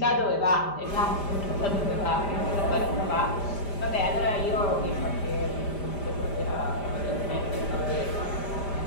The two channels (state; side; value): late; right; 5.0 ms